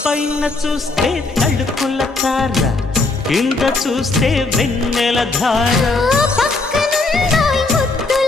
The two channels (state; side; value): quieter; right; 3.5 dB